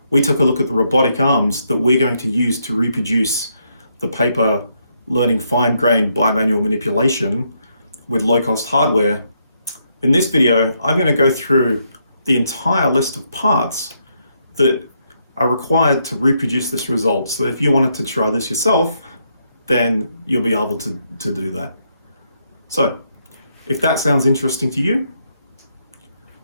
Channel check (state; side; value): inverted; both; correlation -0.76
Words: we took a look at the robotic arms that we're going to use to reproduce the paper learning fine-grained bimanual manipulation with low-cost hardware. In this video, I'm going to go through the entire list of parts that are required to reproduce this result. So if you wanted to try this yourself, then you'll be able to do that. So if that sounds interesting to you,